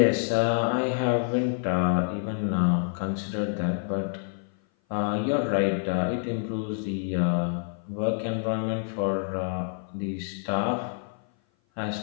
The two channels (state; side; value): silent; right; 56 dB below the other